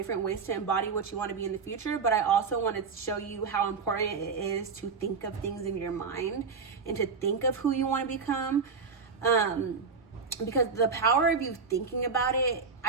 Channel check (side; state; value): left; quieter; 5.2 dB